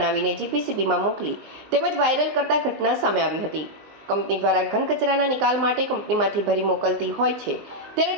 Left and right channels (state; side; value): late; left; 19 ms